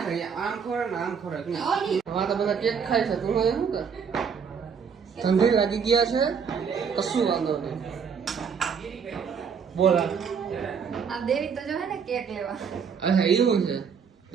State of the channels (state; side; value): quieter; left; 6.5 dB